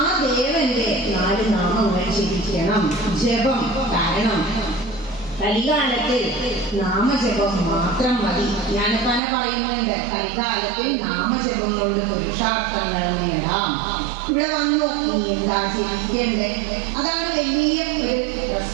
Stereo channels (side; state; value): left; drops out; at 9.2 s